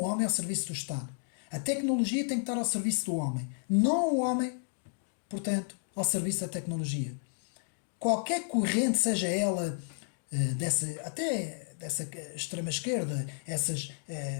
homem ao serviço do Estado. A tecnologia tem que estar ao serviço do homem, não o homem, portanto, ao serviço da tecnologia. Qualquer corrente, seja ela até dessa extrema-esquerda, essas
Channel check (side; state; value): right; silent; digital silence